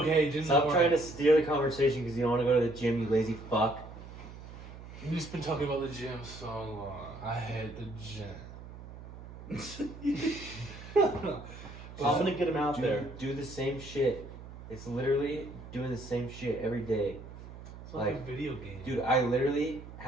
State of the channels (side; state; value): right; noise; hum, 14 dB below the sound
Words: just Stop trying to steer the conversation because you don't want to go to the gym, you lazy fuck. We've just been talking about the gym so long. I hate the gym. I'm gonna get him out there. Do the same shit. It's literally doing the same shit every day. It's like a video game. Dude, I literally